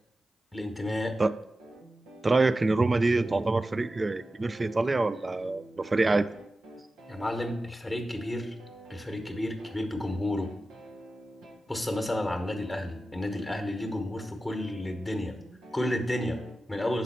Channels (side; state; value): both; normal; correlation 0.93